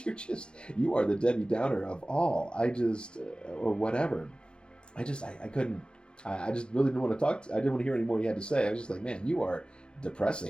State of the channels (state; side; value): late; right; 0.051 ms